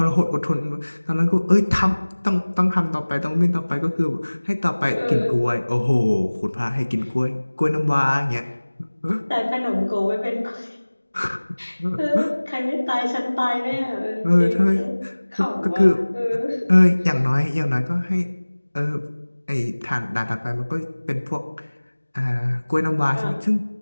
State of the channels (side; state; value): both; inverted; correlation -1.00